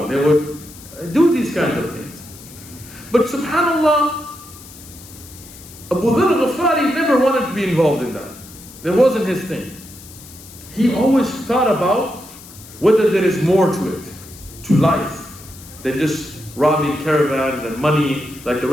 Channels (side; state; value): left; noise; hiss, 19 dB below the sound